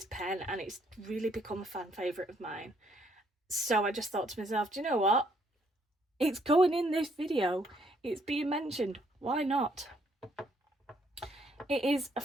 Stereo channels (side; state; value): both; normal; correlation 0.69